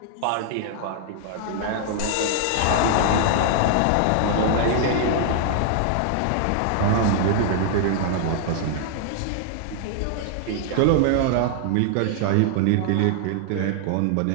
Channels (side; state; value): both; different; correlation 0.00